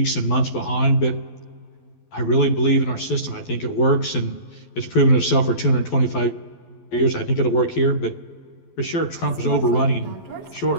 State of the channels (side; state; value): right; late; 12 ms